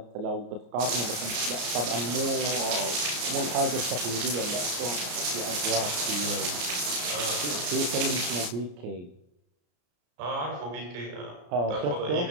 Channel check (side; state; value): left; late; 34 ms